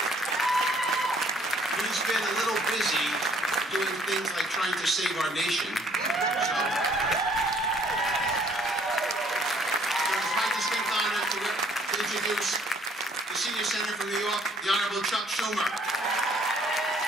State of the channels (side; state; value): both; normal; correlation 0.61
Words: been a little busy doing things like trying to save our nation. So, it's my distinct honor to introduce the senior senator from New York, the Honorable Chuck Schumer.